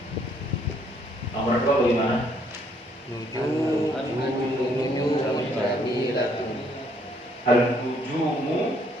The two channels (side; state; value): both; normal; correlation 0.67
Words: Nomor 2 bagaimana? Al-nujumu